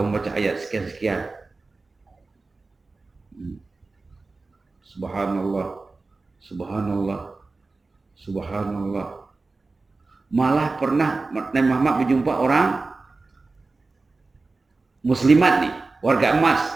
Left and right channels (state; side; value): quieter; left; 3.6 dB